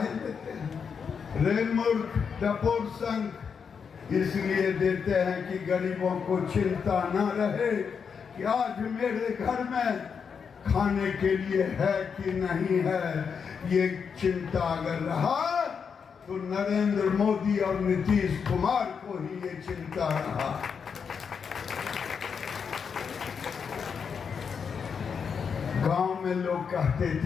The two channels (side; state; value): right; quieter; 6.4 dB